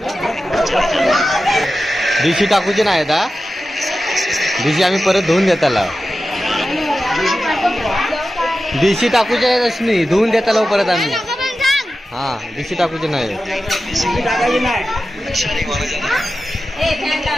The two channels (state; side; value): normal; both; correlation 0.93